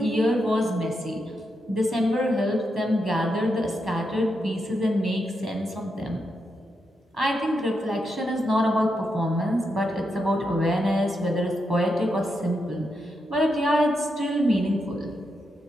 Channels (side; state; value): both; normal; correlation 0.84